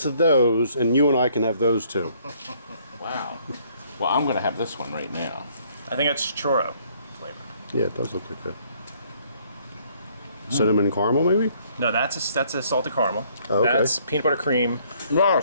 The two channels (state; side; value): inverted; both; correlation -0.64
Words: those, and you and I can have those too. Wow. Well, I'm going to have this one right now. I think it's churro flavor. Yeah, it does look like that. Cinnamon caramel, maybe? No, that's a salted caramel. Oh, okay. That's peanut butter cream.